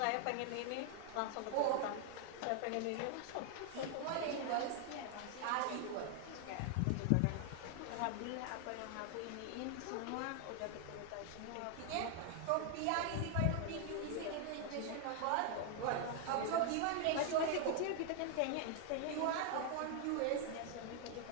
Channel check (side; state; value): both; different; correlation 0.00